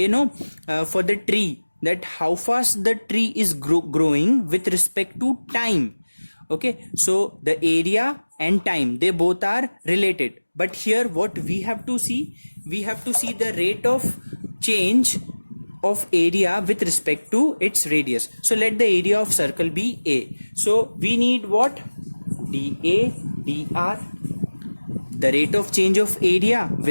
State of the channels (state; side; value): inverted; both; correlation -1.00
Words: for the tree, that how fast the tree is growing with respect to time. Okay, so the area and time, they both are related. But here what we have to see, we have to see the rate of change of area with respect to its radius. So let the area of circle be A. So we need what? dA dr, the rate of change of area